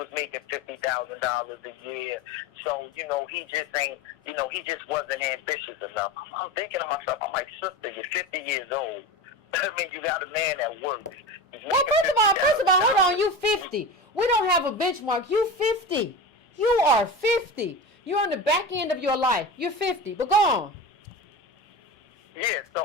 making $50,000 a year. So, he just ain't, he just wasn't ambitious enough. I'm thinking to myself, I'm like, sister, you're 50 years old. I mean, you got a man that works. Well, first of all, hold on, you 50. We don't have a benchmark. You 50. You are 50. You're on the back end of your life. You're 50. But go on. Yeah,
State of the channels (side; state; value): both; normal; correlation 0.27